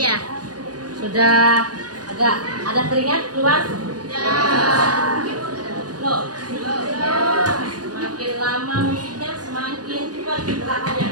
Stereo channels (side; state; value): left; late; 0.69 ms